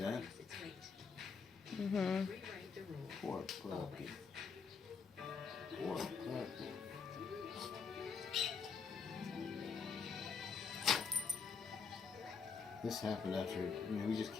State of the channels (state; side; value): quieter; right; 5.6 dB